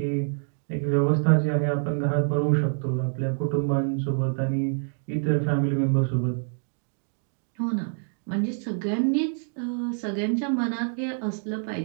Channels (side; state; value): left; silent; 60 dB below the other